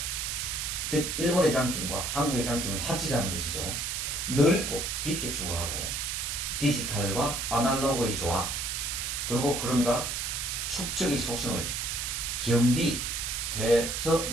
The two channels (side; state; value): right; noise; hiss, 2 dB below the sound